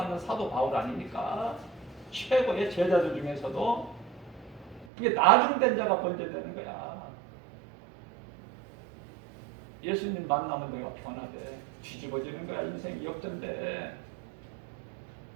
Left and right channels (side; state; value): left; drops out; at 4.9 s